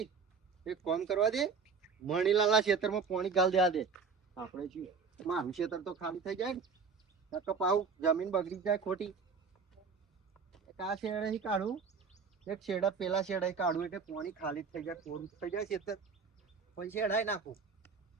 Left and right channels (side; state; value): left; quieter; 5.4 dB